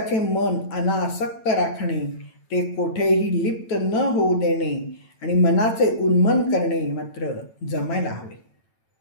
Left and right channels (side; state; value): right; late; 9.0 ms